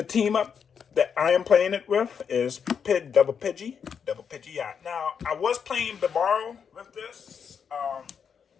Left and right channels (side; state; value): right; quieter; 6.9 dB